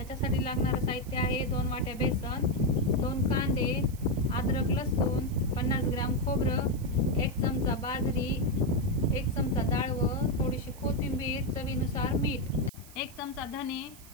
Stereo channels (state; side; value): noise; right; hiss, 20 dB below the sound